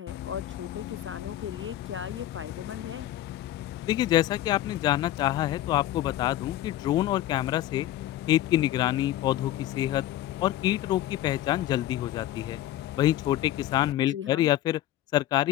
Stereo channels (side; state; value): right; quieter; 13.6 dB